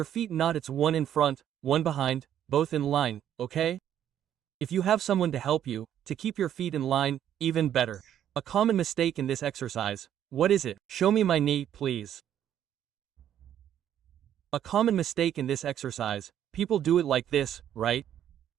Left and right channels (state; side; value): quieter; left; 10.4 dB